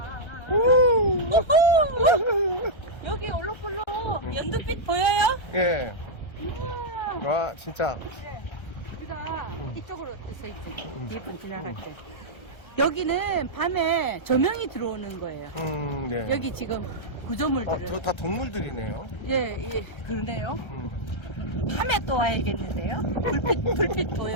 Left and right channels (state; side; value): late; right; 1.3 ms